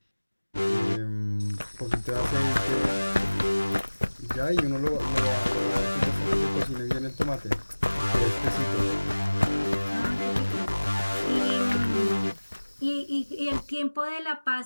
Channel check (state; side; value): inverted; both; correlation -1.00